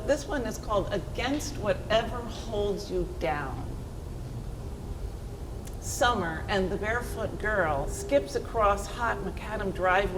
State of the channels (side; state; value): both; identical; correlation 1.00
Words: this one is called Against Whatever Holds You Down. Summer and the barefoot girl skips across hot macadam